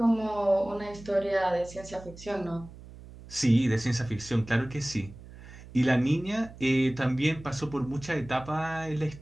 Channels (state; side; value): noise; right; hum, 17 dB below the sound